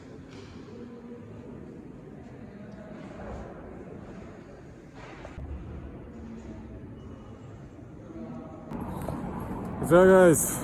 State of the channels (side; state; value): both; identical; correlation 1.00